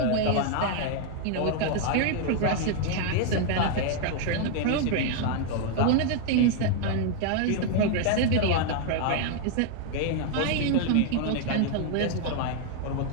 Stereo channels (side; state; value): both; different; correlation 0.00